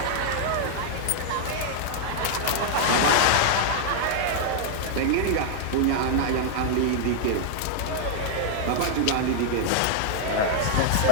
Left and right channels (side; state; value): both; different; correlation -0.01